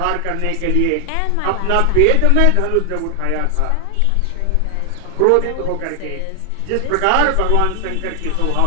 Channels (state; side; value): different; both; correlation 0.00